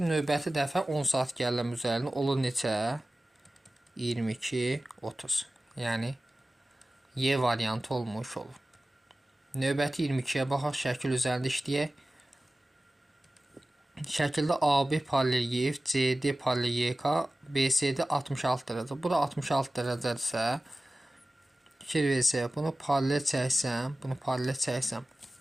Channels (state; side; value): normal; both; correlation 0.96